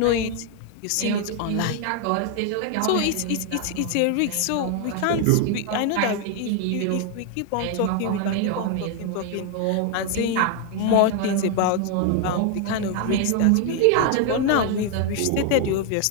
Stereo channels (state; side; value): different; both; correlation 0.00